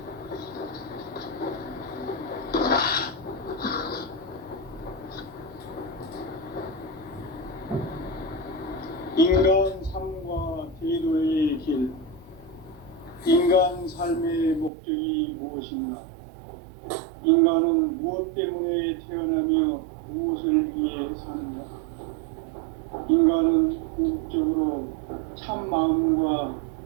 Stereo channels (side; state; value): left; drops out; at 14.7 s